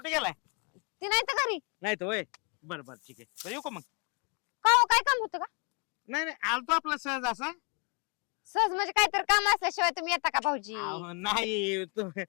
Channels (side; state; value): right; quieter; 34.3 dB